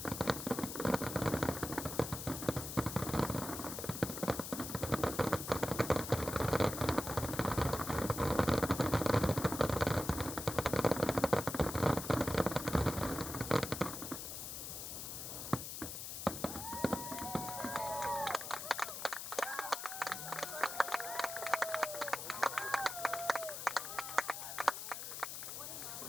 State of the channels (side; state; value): left; noise; hiss, 7 dB below the sound